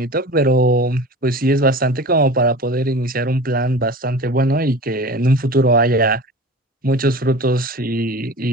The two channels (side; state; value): both; normal; correlation 0.36